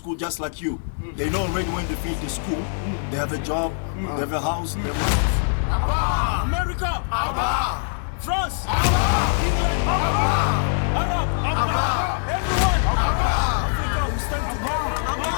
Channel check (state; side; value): silent; right; digital silence